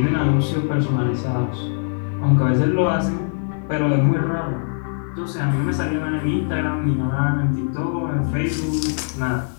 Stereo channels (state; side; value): silent; right; digital silence